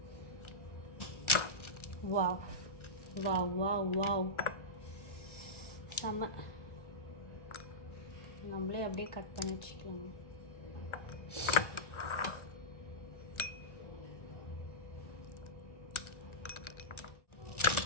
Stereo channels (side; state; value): right; late; 1.3 ms